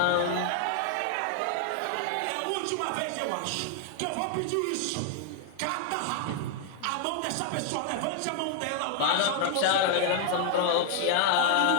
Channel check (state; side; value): different; both; correlation 0.00